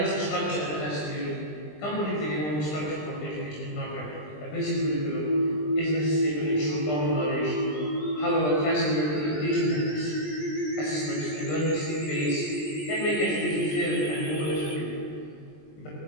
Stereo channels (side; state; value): right; late; 20 ms